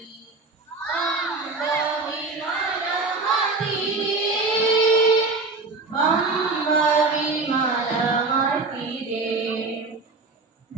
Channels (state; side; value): quieter; left; 3.7 dB